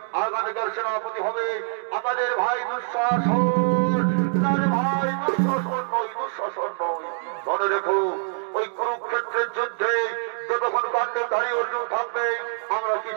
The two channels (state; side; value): silent; left; 56 dB below the other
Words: আগামীকাল সেনাপতি হবে আমাদের ভাই দুঃশাসন। না রে ভাই, দুঃশাসন নয়, দুঃশাসন নয়। মনে রেখো ওই কুরুক্ষেত্রের যুদ্ধে যতক্ষণ পাণ্ডবধারী অর্জুন থাকবে আমরা